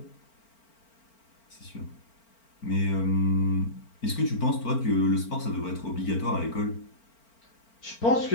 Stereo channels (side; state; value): right; late; 4.4 ms